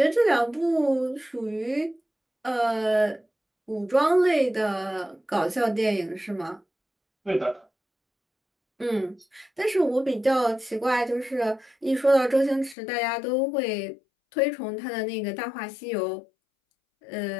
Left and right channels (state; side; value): drops out; right; at 12.8 s